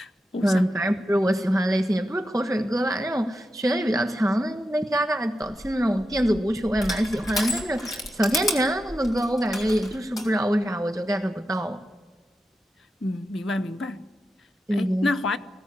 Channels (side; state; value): both; normal; correlation 0.89